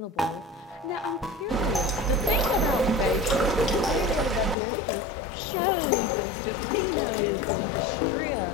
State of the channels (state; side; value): drops out; right; at 4.5 s